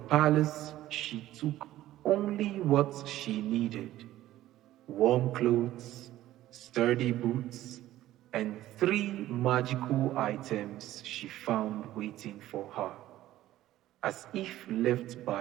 she took only what she needed: warm clothes, sturdy boots, and 3 magical items she found waiting for her, as if left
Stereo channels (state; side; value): quieter; left; 14.5 dB